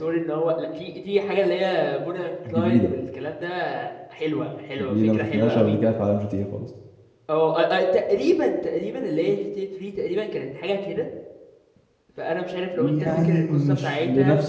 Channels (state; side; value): identical; both; correlation 1.00